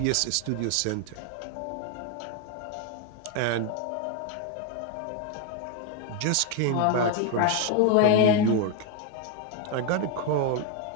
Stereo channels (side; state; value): both; different; correlation 0.01